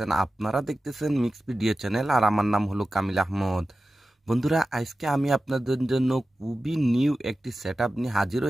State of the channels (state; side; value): normal; both; correlation 0.94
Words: আপনারা দেখতেছেন মিক্স ভিডিও চ্যানেল, আর আমার নাম হলো কামিল আহমদ। বন্ধুরা, আজকে আমি আপনাদের জন্য খুবই নিউ একটি সেটআপ নিয়ে হাজির